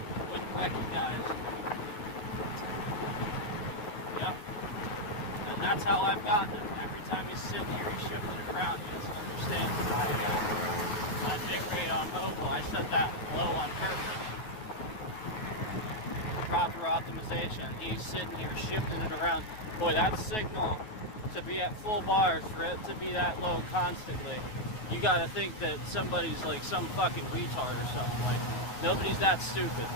wouldn't recognize. Yep. And that's how I've gotten him. Every time he's sitting here, he's shifting it around. He doesn't understand my bit rate on mobile. I set that low on purpose. Proper optimization. He's sitting here shifting it around. Boy, that signal to be at full bars, for it to be that low constantly, you gotta think that somebody's like some fucking retard or something. Like, nobody's that stupid.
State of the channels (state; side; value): late; right; 9.3 ms